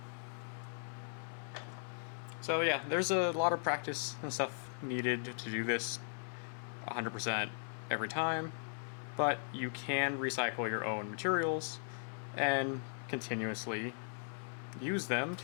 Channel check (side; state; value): right; silent; 52 dB below the other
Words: So yeah, there's a lot of practice and stuff needed to do this 100% every time, but you can recycle your own materials and continuously use them